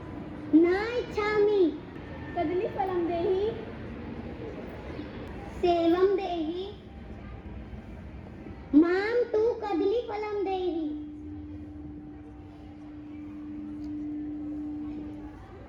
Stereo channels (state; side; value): identical; both; correlation 1.00